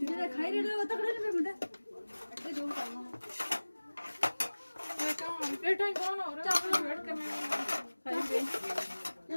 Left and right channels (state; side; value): inverted; both; correlation -1.00